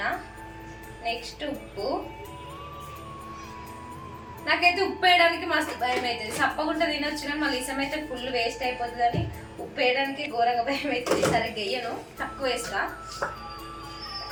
నెక్స్ట్ ఉప్పు. నాకైతే ఉప్పు వేయడానికి మస్తు భయం అవుతుంది, సప్పగుంట తినొచ్చు కానీ మళ్ళీ ఇసం అయితే ఫుల్ వేస్ట్ అయిపోతుంది అని ఉప్పు వేయడానికి ఘోరంగా భయం అవుతుంది. సరిగ్గా వేయను, తక్కువ వేస్తా.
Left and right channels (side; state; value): both; identical; correlation 1.00